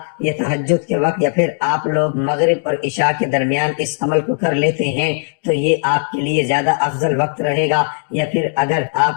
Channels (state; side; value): silent; right; 58 dB below the other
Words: یا تہجد کے وقت یا پھر آپ لوگ مغرب اور عشاء کے درمیان اس عمل کو کر لیتے ہیں تو یہ آپ کے لیے زیادہ افضل وقت رہے گا، یا پھر اگر